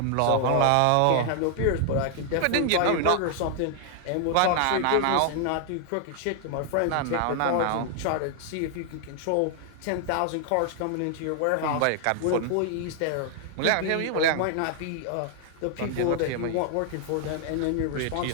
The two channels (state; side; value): different; both; correlation 0.00